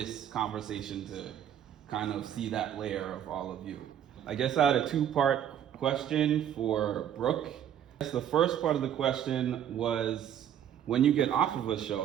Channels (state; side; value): quieter; left; 9.9 dB